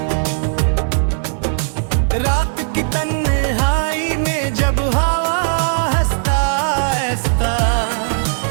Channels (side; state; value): left; silent; digital silence